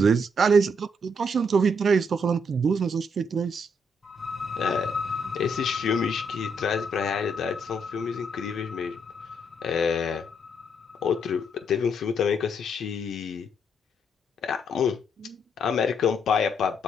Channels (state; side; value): normal; both; correlation 0.74